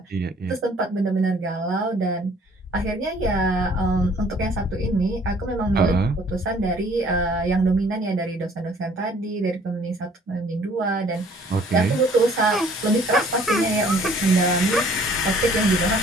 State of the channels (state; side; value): normal; both; correlation 0.57